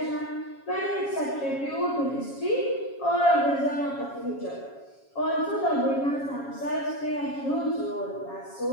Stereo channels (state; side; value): late; right; 7.3 ms